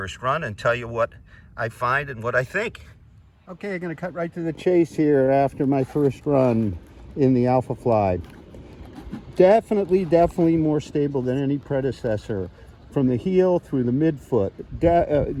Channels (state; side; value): identical; both; correlation 1.00